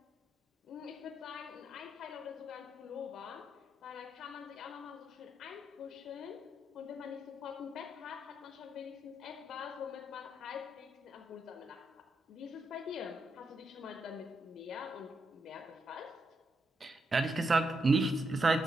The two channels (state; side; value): normal; both; correlation 0.81